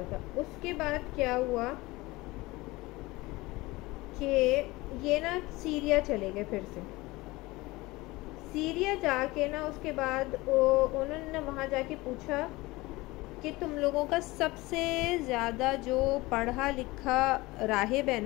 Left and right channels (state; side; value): quieter; right; 21.1 dB